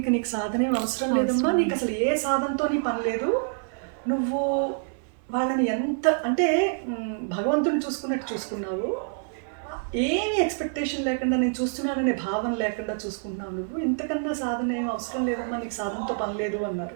నీకు సాధనేం అవసరం లేదమ్మా, నీకు అసలు ఏ సాధనతో నీ పని లేదు, నువ్వు వాళ్ళని ఎంత అంటే భగవంతుని చూసుకున్నట్టు చూసుకున్నావు, ఏమి ఎక్స్పెక్టేషన్ లేకుండా నేను చూస్తున్నాననే భావన లేకుండా చూసుకుంటున్నావు, నువ్వు ఇంతకన్నా సాధన ఏం అవసరం లేదమ్మా, నీకు సాధనతో పని లేదు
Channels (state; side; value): silent; left; 60 dB below the other